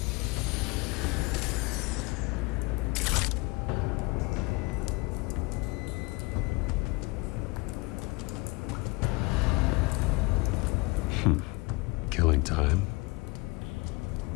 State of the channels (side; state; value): right; quieter; 25.3 dB